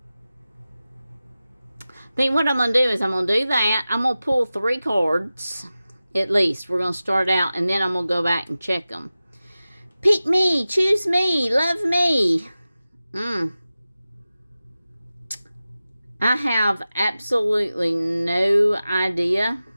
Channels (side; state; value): both; inverted; correlation -0.95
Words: I think what I'm going to do is I'm going to do that. I'm going to pull 3 cards. At least. We're going to start out and then I'm going to go back and check them. Pick me. Choose me. Love me. I have absolutely no idea.